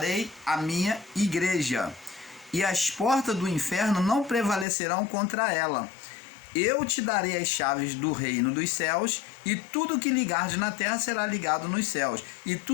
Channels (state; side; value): drops out; right; at 4.7 s